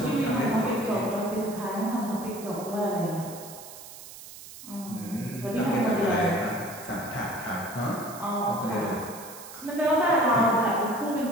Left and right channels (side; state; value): right; noise; hiss, 15 dB below the sound